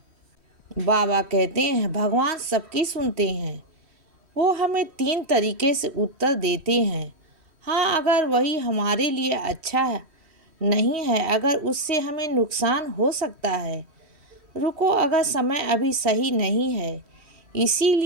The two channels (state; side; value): late; left; 3.1 ms